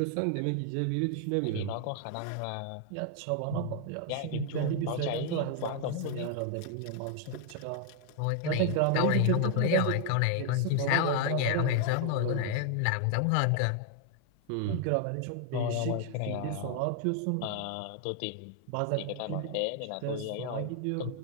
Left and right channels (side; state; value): both; different; correlation 0.00